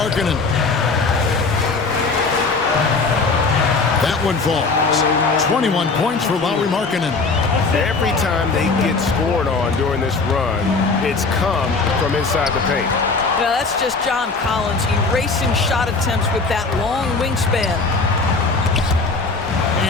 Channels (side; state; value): right; quieter; 4.1 dB